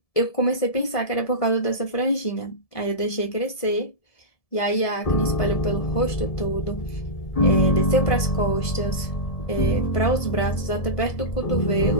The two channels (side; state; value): right; late; 1.7 ms